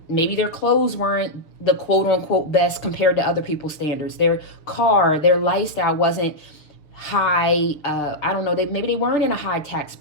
Maybe their clothes weren't the quote unquote best compared to other people's standards. Their car, their lifestyle wasn't high. I don't know. Maybe they weren't in a high tax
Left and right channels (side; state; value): right; late; 6.7 ms